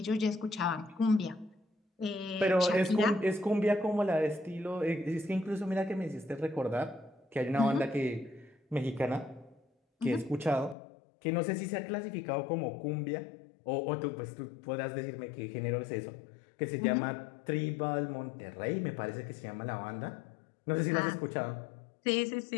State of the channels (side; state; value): right; drops out; at 10.8 s